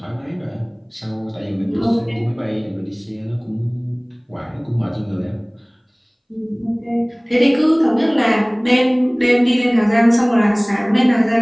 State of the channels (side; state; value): both; identical; correlation 1.00